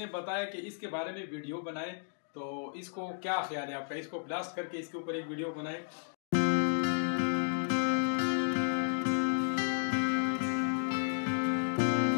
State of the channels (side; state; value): right; silent; digital silence